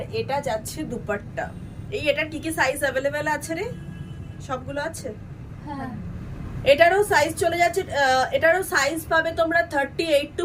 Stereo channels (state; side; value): identical; both; correlation 1.00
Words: এটা যাচ্ছে দুপাট্টা। এই এটার কি কি সাইজ অ্যাভেলেবেল আছে রে? সবগুলো আছে? হ্যাঁ। এটারও সাইজ চলে যাচ্ছে, এটারও সাইজ পাবে তোমরা 38 to